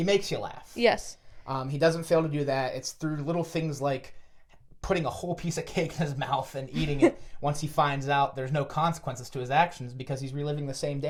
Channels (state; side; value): identical; both; correlation 1.00